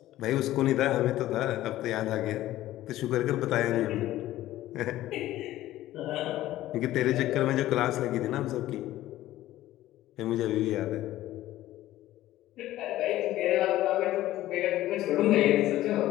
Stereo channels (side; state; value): right; quieter; 14.8 dB